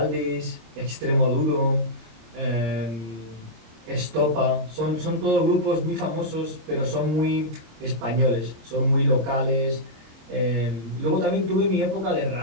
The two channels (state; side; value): late; left; 26 ms